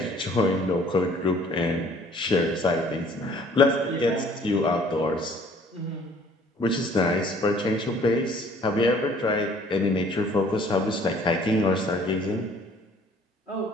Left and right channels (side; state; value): both; normal; correlation 0.56